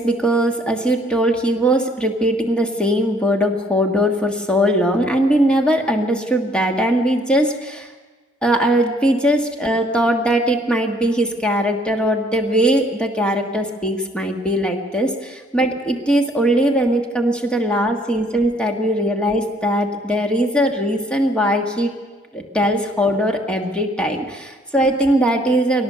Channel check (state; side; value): normal; both; correlation 0.62